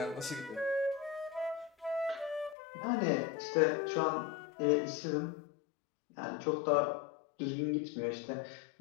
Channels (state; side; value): drops out; right; at 2.6 s